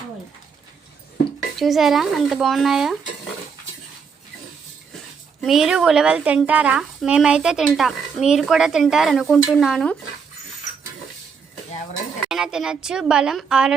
చూసారా ఎంత బాగున్నాయో. మీరు ఉలవలు తింటారా? మేమైతే తింటాం. మీరు కూడా తింటారు అనుకుంటున్నాను. ఎవరైనా తినచ్చు, బలం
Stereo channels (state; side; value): quieter; left; 6.1 dB